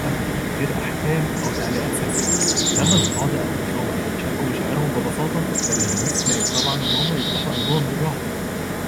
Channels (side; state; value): both; identical; correlation 1.00